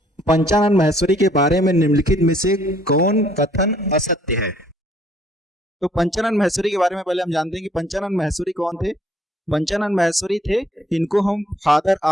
पंचानन माहेश्वरी के बारे में निम्नलिखित में से कौन कथन असत्य है। तो पंचानन माहेश्वरी के बारे में पहले हम जानते हैं कि पंचानन माहेश्वरी कौन थे। पंचानन माहेश्वरी थे, इनको हम फादर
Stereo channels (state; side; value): normal; both; correlation 0.63